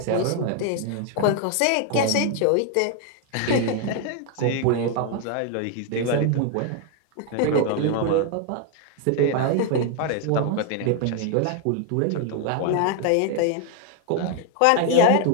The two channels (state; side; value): different; both; correlation 0.01